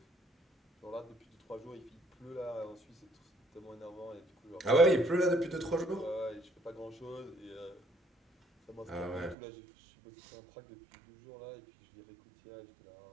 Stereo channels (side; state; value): left; drops out; at 9.3 s